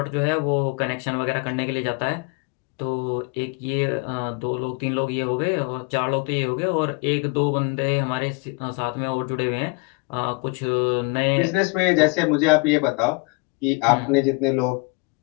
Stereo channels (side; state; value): right; quieter; 30.1 dB